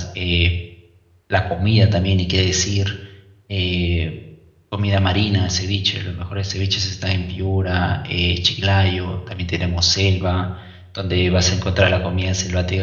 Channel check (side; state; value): both; identical; correlation 1.00